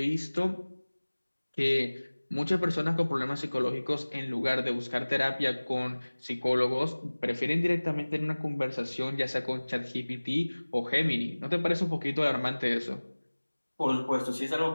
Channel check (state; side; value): inverted; both; correlation -1.00